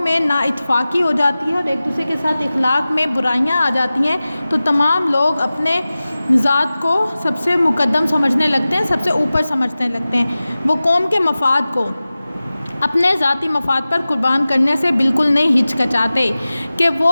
نا اتفاقی ہو جاتی ہے اور ایک دوسرے کے ساتھ اخلاق میں برائیاں آ جاتی ہیں تو تمام لوگ اپنے ذات کو سب سے مقدم سمجھنے لگتے ہیں، سب سے اوپر سمجھنے لگتے ہیں۔ وہ قوم کے مفاد کو اپنے ذاتی مفاد پر قربان کرنے سے بالکل نہیں ہچکچاتے، کہ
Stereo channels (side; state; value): both; inverted; correlation -0.96